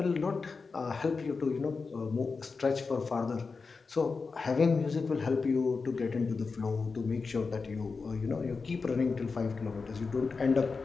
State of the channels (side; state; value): right; quieter; 4.6 dB